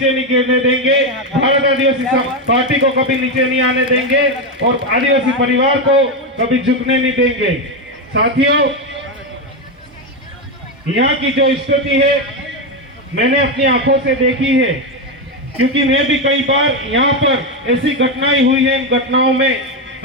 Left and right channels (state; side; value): normal; both; correlation 0.08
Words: नहीं गिरने देंगे, भारत आदिवासी पार्टी को कभी नीचे नहीं आने देंगे और आदिवासी परिवार को कभी झुकने नहीं देंगे। साथियों, यहाँ की जो स्थिति है मैंने अपनी आंखों से देखी है, क्योंकि मैं भी कई बार यहाँ पर ऐसी घटनाएं हुई है। इन घटनाओं में